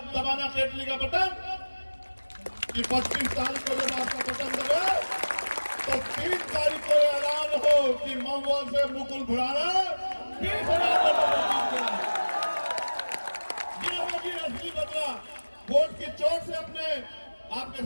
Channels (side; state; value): both; inverted; correlation -1.00